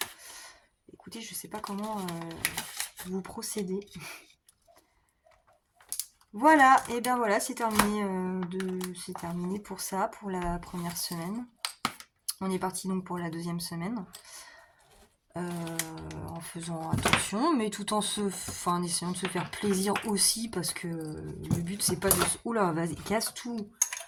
écoutez, je sais pas comment vous procédez. Voilà, et bien voilà, c'est terminé, c'est terminé pour ça, pour la première semaine. On est parti donc pour la deuxième semaine. En faisant attention, mais tout en en essayant de se faire plaisir aussi, parce que le but c'est pas de se... Oula, vas-y, casse tout.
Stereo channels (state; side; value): identical; both; correlation 1.00